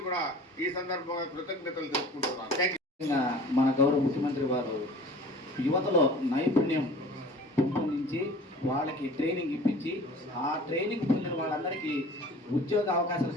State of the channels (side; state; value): both; normal; correlation 0.44